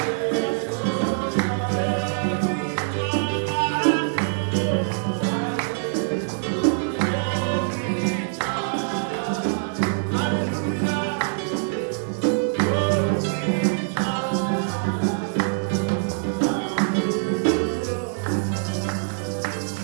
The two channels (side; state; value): left; silent; digital silence